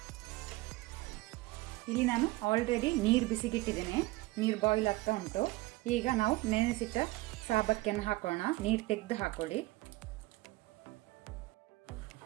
ಇಲ್ಲಿ ನಾನು ಆಲ್ರೆಡಿ ನೀರು ಬಿಸಿಗಿಟ್ಟಿದ್ದೇನೆ, ನೀರು ಬಾಯ್ಲ್ ಆಗ್ತಾ ಉಂಟು. ಈಗ ನಾವು ನೆನೆಸಿಟ್ಟ ಸಾಬಕ್ಕಿಯನ್ನು ಹಾಕೋಣ. ನೀರು ತೆಗೆದು ಹಾಕೊಳ್ಳಿ.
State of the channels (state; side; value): quieter; left; 20.1 dB